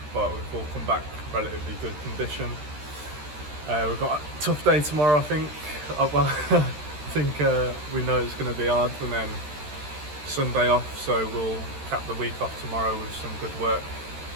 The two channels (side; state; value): left; late; 13 ms